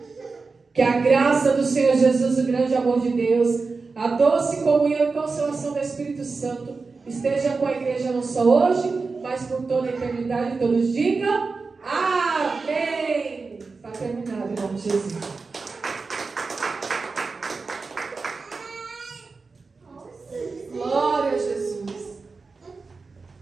Que a graça do Senhor Jesus, o grande amor de Deus, a doce comunhão e consolação do Espírito Santo esteja com a igreja não só hoje, mas por toda a eternidade. Todos digam amém. Está terminado em nome de Jesus. Glória a Jesus.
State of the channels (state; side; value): quieter; left; 4.3 dB